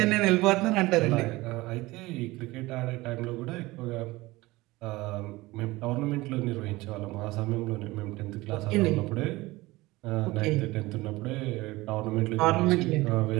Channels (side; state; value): left; quieter; 20.2 dB